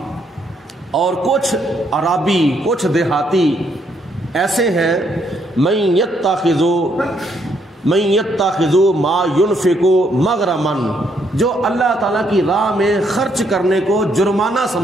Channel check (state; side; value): normal; both; correlation 0.72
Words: اور کچھ عرابی کچھ دیہاتی ایسے ہیں، من یتخذ ما ينفق مغرما، جو اللہ تعالیٰ کی راہ میں خرچ کرنے کو جرمانہ